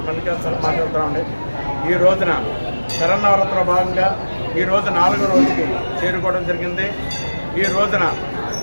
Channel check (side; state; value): both; inverted; correlation -1.00